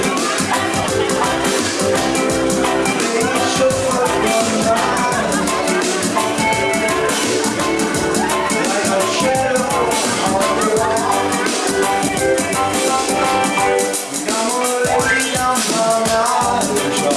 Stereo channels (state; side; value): identical; both; correlation 1.00